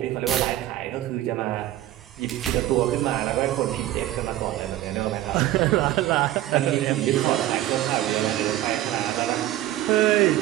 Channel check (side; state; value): left; quieter; 14.2 dB